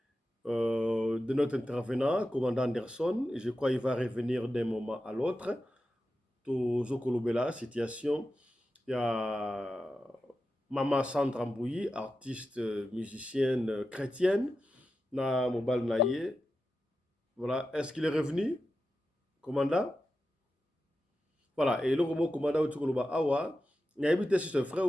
de notre intervenant, commandant Anderson. Et je crois qu'il va revenir d'un moment à l'autre. Tozo Kolobela, situation. Il y a Maman Sandra Mbouyi, artiste, musicienne chrétienne. Na Mobal Naye. Voilà, est-ce qu'il est revenu, commandant? Voilà, et le roman commandant au Tukoloba Awa, il y a évité si c'est vrai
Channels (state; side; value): normal; both; correlation 0.91